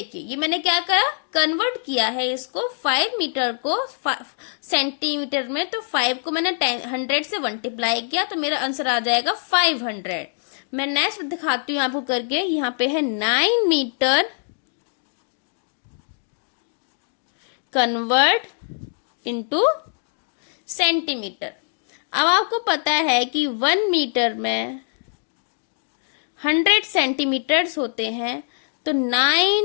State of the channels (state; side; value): silent; right; digital silence